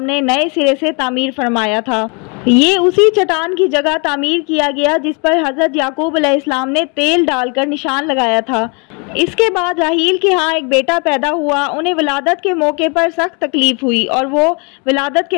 ने नए सिरे से तामीर फरमाया था। ये उसी चट्टान की जगह तामीर किया गया जिस पर हज़रत याकूब अलैहिस्सलाम ने तेल डालकर निशान लगाया था। इसके बाद राहील के यहाँ एक बेटा पैदा हुआ। उन्हें विलादत के मौके पर सख्त तकलीफ़ हुई और वो विलादत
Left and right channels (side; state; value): right; quieter; 33.8 dB